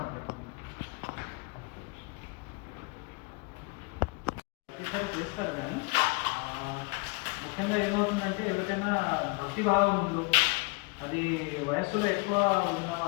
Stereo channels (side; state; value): right; quieter; 29.3 dB